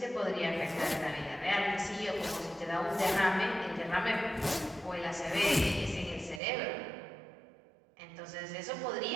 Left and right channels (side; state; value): left; drops out; at 6.4 s